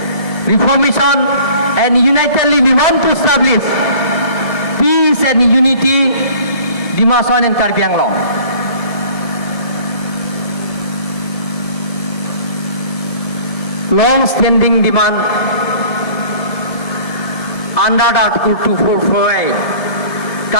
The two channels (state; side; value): late; right; 1.7 ms